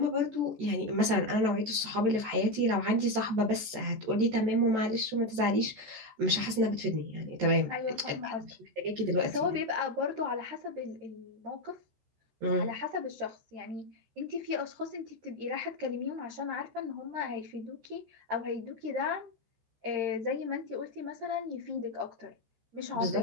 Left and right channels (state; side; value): late; left; 14 ms